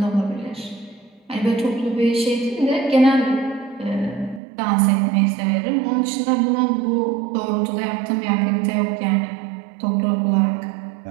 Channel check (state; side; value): drops out; left; at 4.4 s